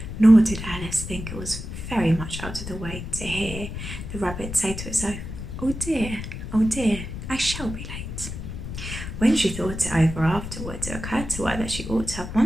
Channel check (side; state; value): left; noise; rumble, 8 dB below the sound